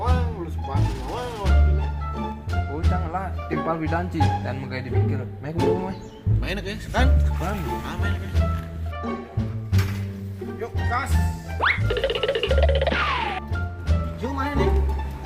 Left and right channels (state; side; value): identical; both; correlation 1.00